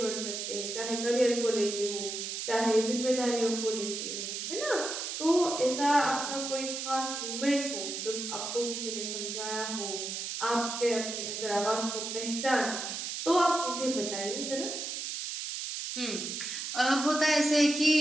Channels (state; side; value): noise; right; hiss, 5 dB below the sound